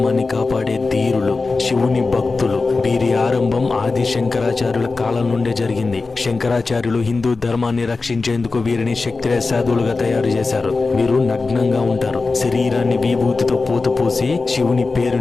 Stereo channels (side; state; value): right; quieter; 3.9 dB